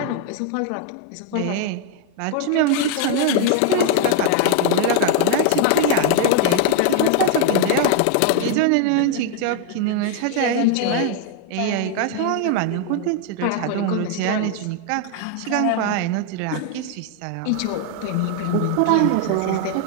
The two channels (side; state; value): both; different; correlation 0.00